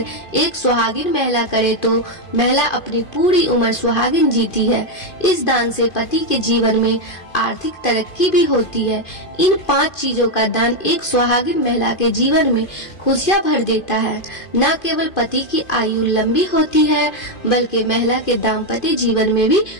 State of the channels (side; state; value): right; late; 2.5 ms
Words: एक सुहागिन महिला करे तो महिला अपनी पूरी उम्र सुहागिन जीती है। इस दान से पति के जीवन में आर्थिक तरक्की भी होती है। इन 5 चीजों का दान एक सुहागिन महिला के जीवन में खुशियां भर देता है। न केवल पति की आयु लंबी होती है, बल्कि महिला के दाम्पत्य जीवन में भी